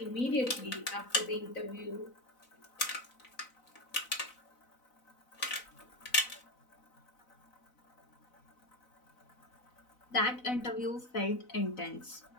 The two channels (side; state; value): right; late; 4.0 ms